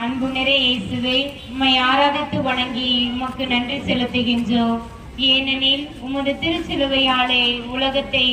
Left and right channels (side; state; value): both; identical; correlation 1.00